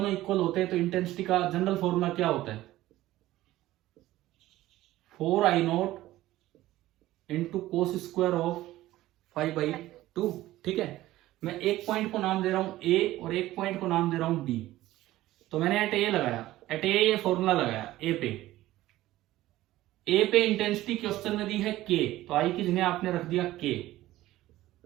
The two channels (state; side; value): quieter; left; 15.8 dB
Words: इक्वल होते हैं तो इंटेंसिटी का जनरल फॉर्मूला क्या होता है, 4I0 into cos square of 5/2। ठीक है, मैं एक पॉइंट को नाम दे रहा हूं ए और एक पॉइंट को नाम दे रहा हूं बी। तो मैंने एट ए लगाया, एट ए ये फॉर्मूला लगाया ए पे इंटेंसिटी क्वेश्चन में दी है के, तो आई की जगह आपने रख दिया के